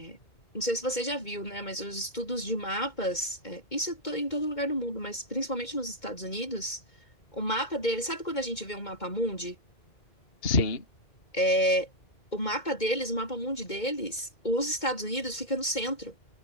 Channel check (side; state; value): right; late; 2.2 ms